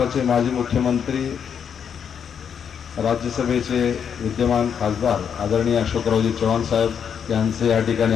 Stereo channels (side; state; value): right; quieter; 7.6 dB